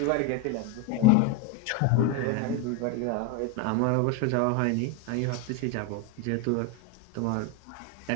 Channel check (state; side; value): different; both; correlation 0.02